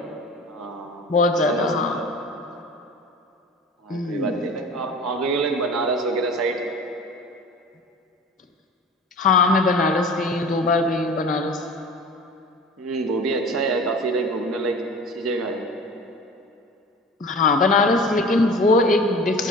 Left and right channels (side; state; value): both; normal; correlation 0.39